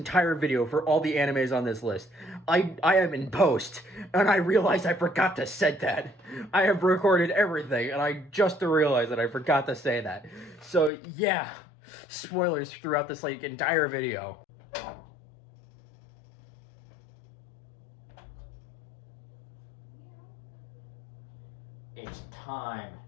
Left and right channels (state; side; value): drops out; right; at 10.9 s